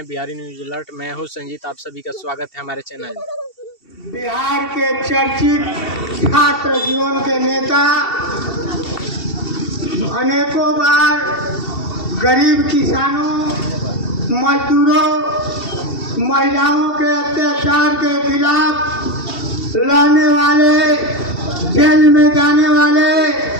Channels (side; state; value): right; late; 2.7 ms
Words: बिहारी न्यूज अलर्ट। मैं हूं संजीत, आप सभी का स्वागत है हमारे चैनल में। बिहार के चर्चित छात्र जीवन के नेता अनेकों बार गरीब किसानों, मजदूरों, महिलाओं के अत्याचार के खिलाफ लड़ने वाले, जेल में जाने वाले